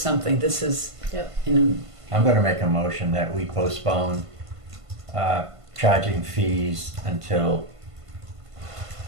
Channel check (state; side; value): late; left; 1.5 ms